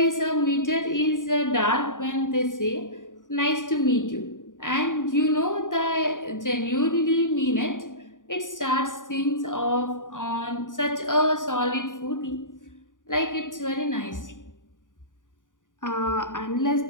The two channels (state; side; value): late; right; 0.88 ms